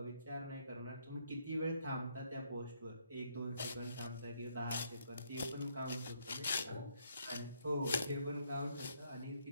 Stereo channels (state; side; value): inverted; both; correlation -0.71